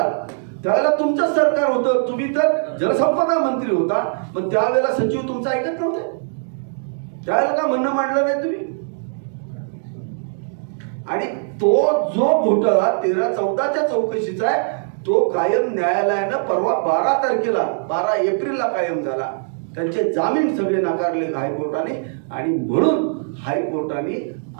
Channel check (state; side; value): silent; left; digital silence